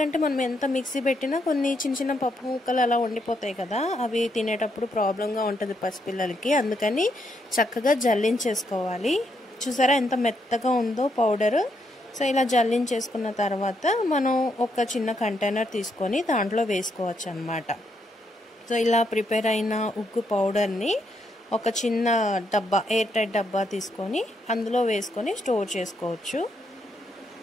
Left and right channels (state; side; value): normal; both; correlation 0.77